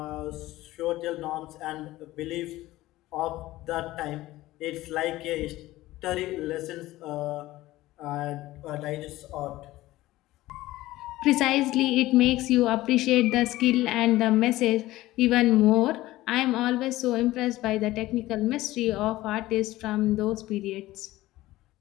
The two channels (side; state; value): right; quieter; 17.0 dB